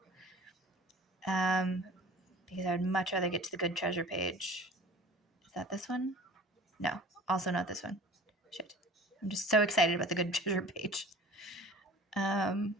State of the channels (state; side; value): normal; both; correlation 0.44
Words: Because I would much rather get to the good treasure page. Is that this one? No, also not this one. Shit. I'm just so excited about the good treasure page.